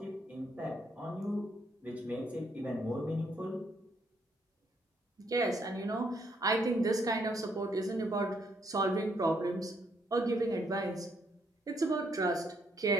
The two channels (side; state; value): both; normal; correlation 0.72